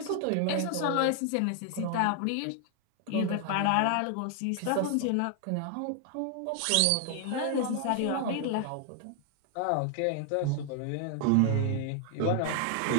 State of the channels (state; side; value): different; both; correlation 0.00